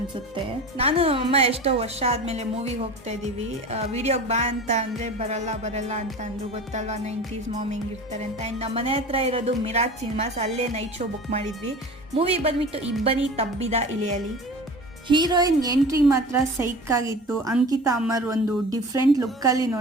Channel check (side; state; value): both; normal; correlation 0.36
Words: ನಾನು ಅಮ್ಮ ಎಷ್ಟೋ ವರ್ಷ ಆದಮೇಲೆ ಮೂವಿಗೆ ಹೋಗ್ತಾ ಇದ್ದೀವಿ. ವಿಡಿಯೋಗೆ ಬಾ ಅಂತ ಅಂದರೆ ಬರಲ್ಲ ಅಂತ ಅಂದರು. ಗೊತ್ತಲ್ವ 90s ಮಾಮ್ ಹೆಂಗಿರ್ತಾರೆ ಅಂತ. ಆ್ಯಂಡ್ ನಮ್ಮ ಮನೆ ಹತ್ರ ಇರೋದು ಮಿರಾಜ್ ಸಿನಿಮಾಸ್, ಅಲ್ಲೇ ನೈಟ್ ಶೋ ಬುಕ್ ಮಾಡಿದ್ವಿ. ಮೂವಿ ಬಂದ್ಬಿಟ್ಟು ಇಬ್ಬನಿ ತಬ್ಬಿದ ಇಳಿಯಲಿ. ಹೀರೋಯಿನ್ ಎಂಟ್ರಿ ಮಾತ್ರ ಸೈಕ್ ಆಗಿತ್ತು. ಅಂಕಿತಾ ಅಮರ್ ಒಂದು ಡಿಫ್ರೆಂಟ್ ಲುಕ್ಕಲ್ಲಿ